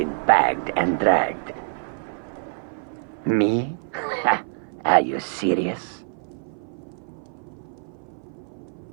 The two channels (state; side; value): silent; left; 56 dB below the other